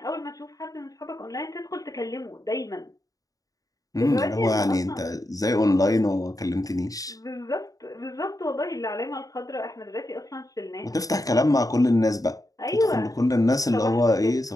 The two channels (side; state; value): right; late; 0.17 ms